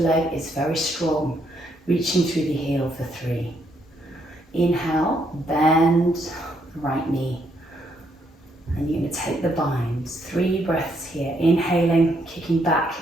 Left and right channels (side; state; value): both; normal; correlation 0.74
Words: is very strong, reaching through the heel for 3. Inhale, bend the right knee, and you're going to take the binds. 3 breaths here, inhaling, kicking back